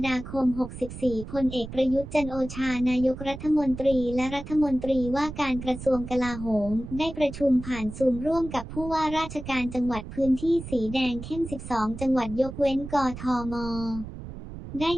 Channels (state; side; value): noise; right; rumble, 11 dB below the sound